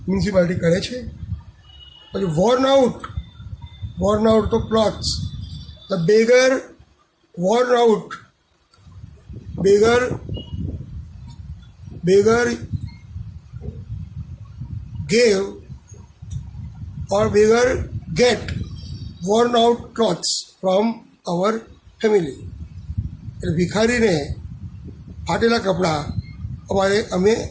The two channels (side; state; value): both; identical; correlation 1.00